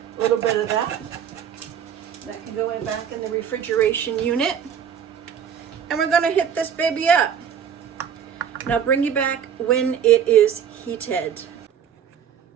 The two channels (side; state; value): left; quieter; 8.3 dB